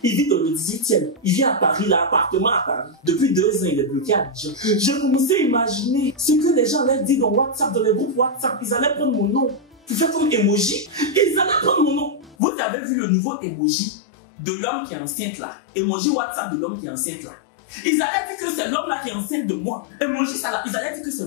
Il vit dans le 18e. Il vit à Paris, l'appartement à Paris. Depuis 2 ans, il est bloqué à Abidjan. J'ai commencé à imaginer ce que les gens allaient dire dans WhatsApp, dans les groupes WhatsApp. Ils allaient prendre mon nom pour faire comme emoji. Ils allaient prendre mon nom. Vous avez vu le nouveau emoji de l'homme qui est enceinte là. Emoji WhatsApp de l'homme qui est enceinte là. Ils allaient dire que c'est l'homme là qui est enceinte de moi. Emoji ça là. Ils allaient dire que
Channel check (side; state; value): right; drops out; at 12.4 s